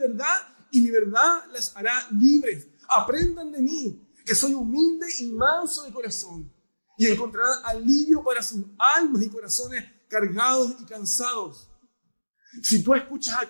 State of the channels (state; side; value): inverted; both; correlation -1.00